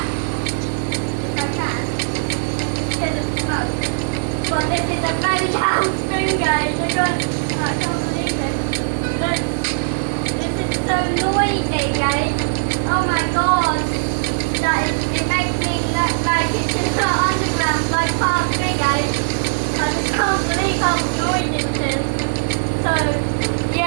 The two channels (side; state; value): left; silent; 66 dB below the other